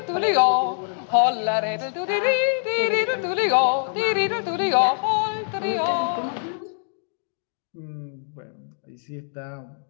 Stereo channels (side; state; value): right; silent; digital silence